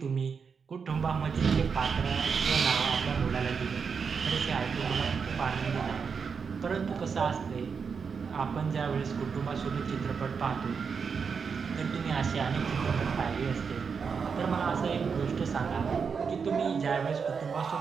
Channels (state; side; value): quieter; left; 5.9 dB